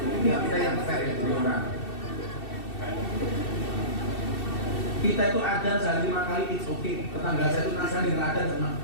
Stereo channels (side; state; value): right; late; 2.7 ms